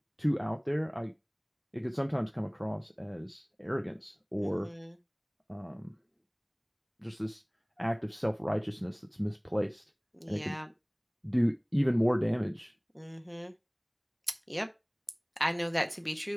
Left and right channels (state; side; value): identical; both; correlation 1.00